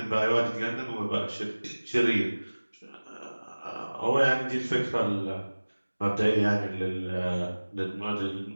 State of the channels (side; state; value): both; inverted; correlation -1.00